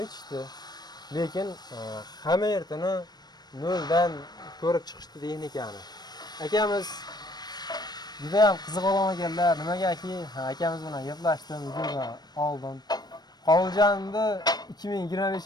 aytishdi. Lekin hamma yertini noldan ko'rib chiqishdi texnikani. Akamiz juda ham qiziq olamaganlar. Nimagaki, akamiz bilan gaplashdim, videoga oldim. Qolganimda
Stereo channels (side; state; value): right; late; 0.20 ms